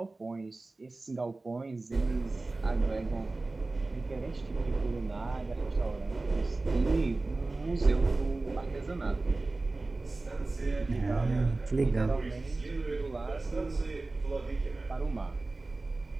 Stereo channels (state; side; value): quieter; left; 3.3 dB